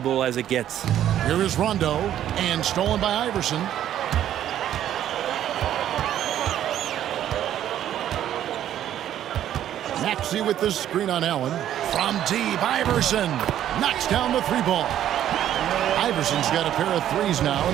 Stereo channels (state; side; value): quieter; left; 11.3 dB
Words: as it gets. Here is Rondo, and stolen by Iverson. Maxey with the screen on Allen. From deep, Iverson knocks down the three ball. Iverson's got a pair of threes now